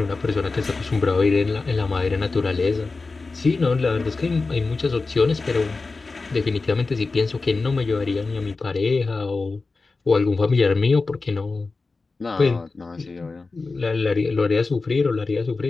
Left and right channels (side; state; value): right; quieter; 3.8 dB